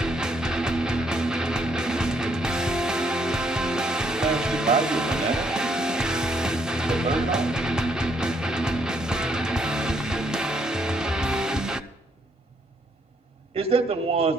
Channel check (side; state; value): both; normal; correlation 0.71